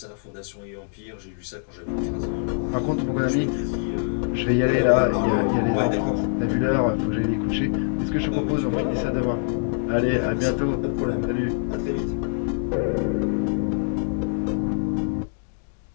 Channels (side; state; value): right; silent; digital silence